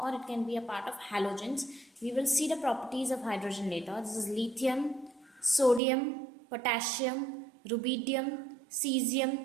or it can be a part of halogens. We will see the properties of hydrogen later. This is lithium, sodium, potassium, rubidium,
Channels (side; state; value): left; drops out; at 5.8 s